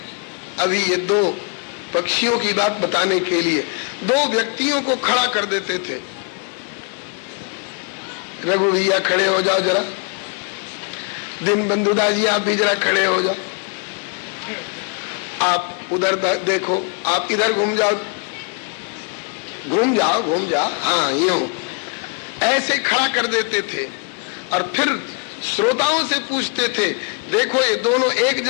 अभी ये दो पक्षियों की बात बताने के लिए दो व्यक्तियों को खड़ा कर देते थे। रघु भैया खड़े हो जाओ जरा, दिन बंधुदा जी आप भी जरा खड़े हो जाओ, आप उधर देखो, आप इधर घूम जाओ, घूम जाओ, घूम जाओ, हाँ यूं ऐसे खड़ा कर देते थे। और फिर श्रोताओं से पूछते थे, देखो ये दोनों एक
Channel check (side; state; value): right; quieter; 35.8 dB